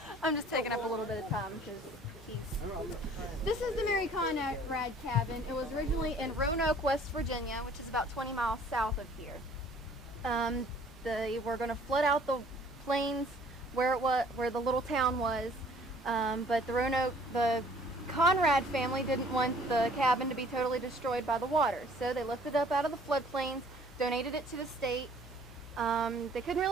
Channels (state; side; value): normal; both; correlation 0.55